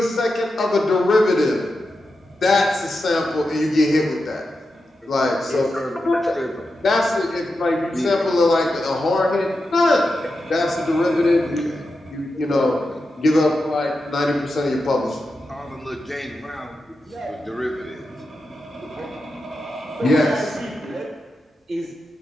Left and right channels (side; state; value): both; normal; correlation 0.89